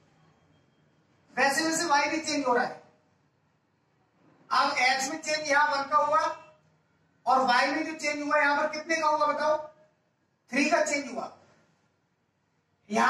वैसे वैसे y भी चेंज हो रहा है। अब x में चेंज यहां 1 का हुआ और y में जो चेंज हुआ यहां पर कितने का हुआ बताओ, 3 का चेंज हुआ।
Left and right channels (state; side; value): identical; both; correlation 1.00